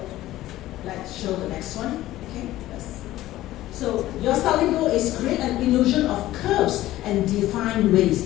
let's show the next one. Okay? So your styling goal is create an illusion of curves and defined waist.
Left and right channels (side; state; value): right; quieter; 15.3 dB